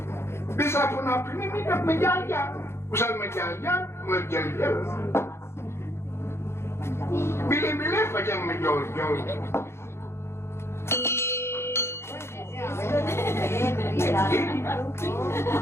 Bisa pun api ini midap menjajah. Usan menjajah menjajah. Bilih-bilih macam menjol-jol.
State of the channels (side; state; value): right; late; 0.12 ms